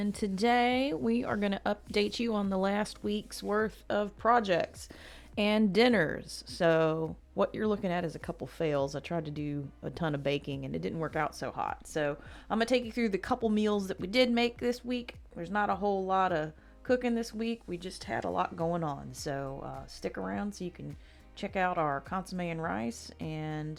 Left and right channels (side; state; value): both; identical; correlation 1.00